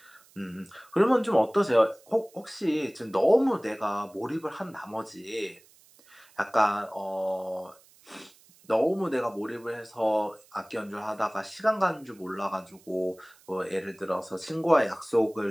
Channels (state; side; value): noise; right; hiss, 28 dB below the sound